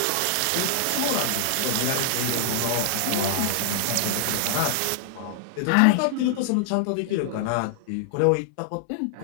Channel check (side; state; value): both; different; correlation 0.00